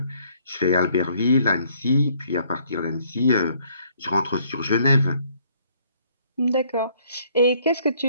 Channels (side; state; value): both; inverted; correlation -0.64